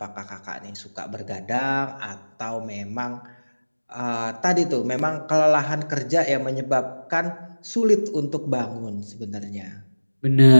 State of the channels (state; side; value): inverted; both; correlation -1.00